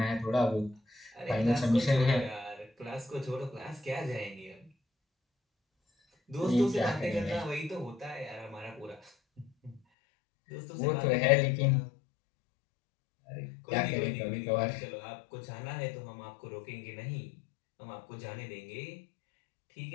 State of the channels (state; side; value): drops out; right; at 9.8 s